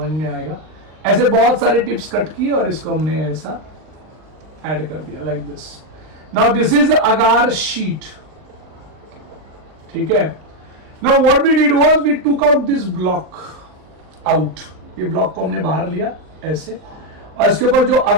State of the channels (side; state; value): left; late; 39 ms